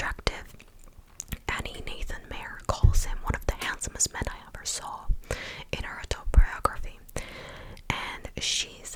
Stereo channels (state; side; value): identical; both; correlation 1.00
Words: Annie Nathan Mayer calls him one of the handsomest men I ever saw in her autobiography, and she